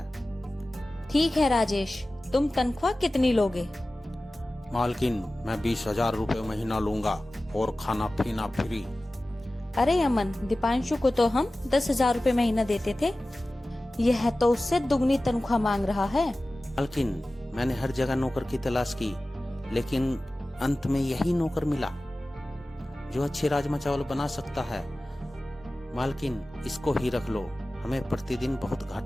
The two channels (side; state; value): both; normal; correlation 0.96